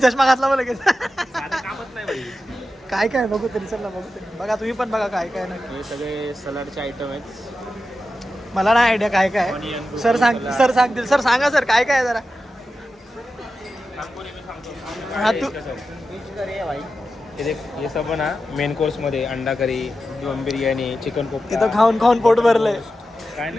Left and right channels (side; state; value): both; normal; correlation 0.91